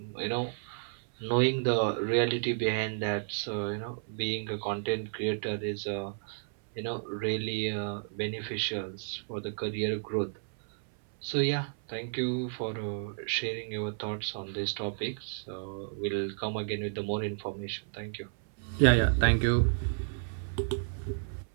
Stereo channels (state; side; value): silent; left; 57 dB below the other